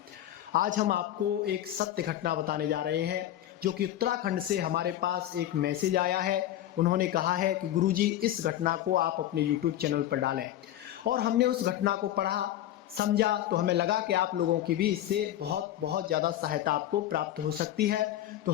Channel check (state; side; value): quieter; right; 12.8 dB